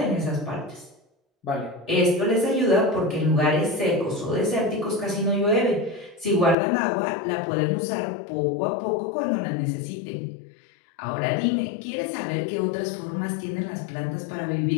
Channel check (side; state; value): right; drops out; at 6.6 s